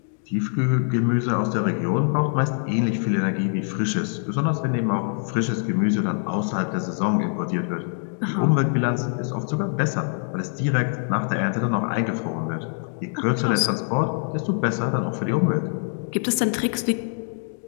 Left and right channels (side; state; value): right; silent; 56 dB below the other